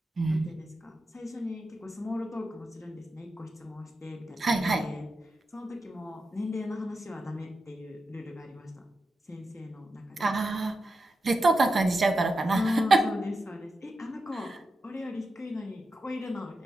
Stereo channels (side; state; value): both; normal; correlation 0.89